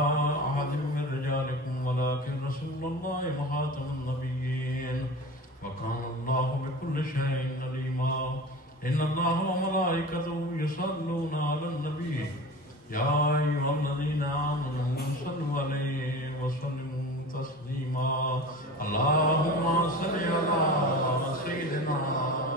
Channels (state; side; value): normal; both; correlation 0.34